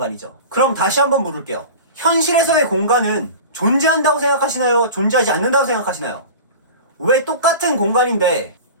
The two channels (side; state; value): both; inverted; correlation -0.34